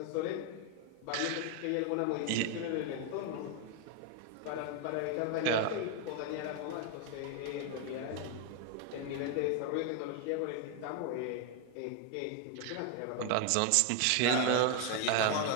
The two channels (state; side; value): different; both; correlation 0.01